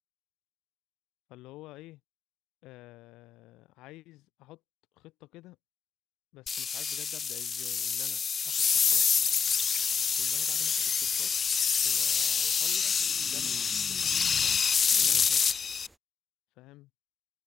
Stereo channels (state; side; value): quieter; right; 6.1 dB